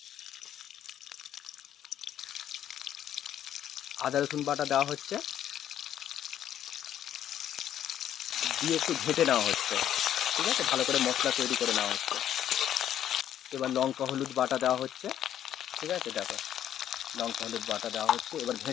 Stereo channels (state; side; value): quieter; right; 10.7 dB